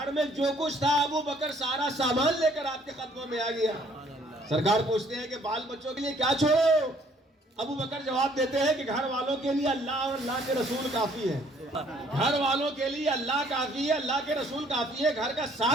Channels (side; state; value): both; normal; correlation 0.61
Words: میں جو کچھ تھا ابو بکر سارا سامان لے کر آپ کے قدموں میں آ گیا. سرکار پوچھتے ہیں کہ بال بچوں کے لیے کیا چھوڑو؟ ابو بکر جواب دیتے ہیں کہ گھر والوں کے لیے اللہ اور اللہ کے رسول کافی ہے. گھر والوں کے لیے اللہ کافی ہے، اللہ کے رسول کافی ہے. گھر کا